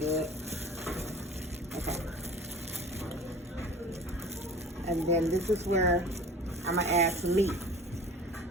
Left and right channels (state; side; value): normal; both; correlation 0.43